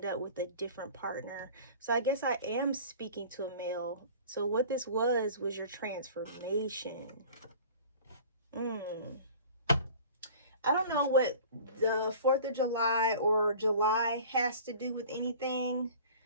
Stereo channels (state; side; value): inverted; both; correlation -0.43